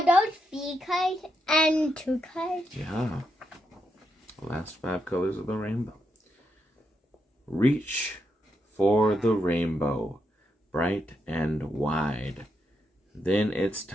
those 3 colors and 2 colors? Yeah. The last 5 colors of the rainbow. Reach for the rainbow, bright and wide. Then it's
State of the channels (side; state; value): both; normal; correlation 0.82